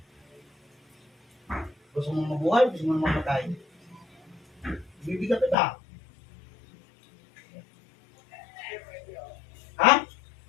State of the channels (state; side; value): drops out; right; at 5.6 s